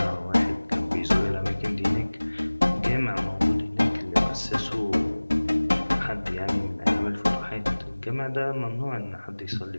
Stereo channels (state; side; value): inverted; both; correlation -1.00